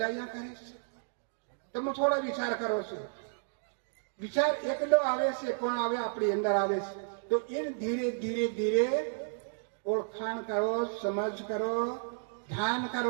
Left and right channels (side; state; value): left; silent; digital silence